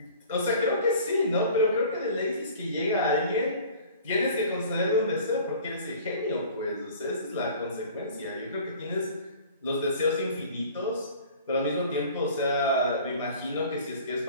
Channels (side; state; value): both; inverted; correlation -0.45